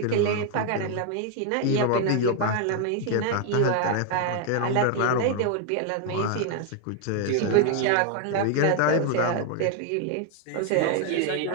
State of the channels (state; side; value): different; both; correlation 0.00